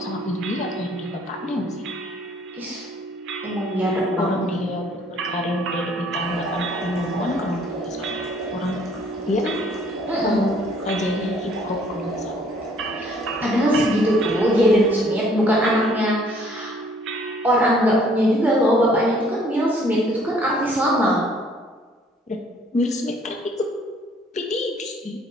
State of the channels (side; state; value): both; normal; correlation 0.60